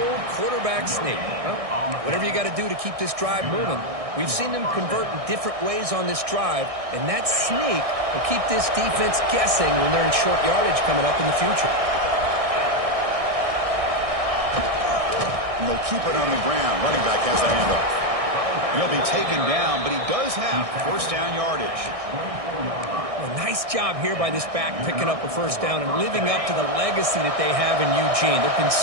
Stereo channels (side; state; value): left; late; 1.6 ms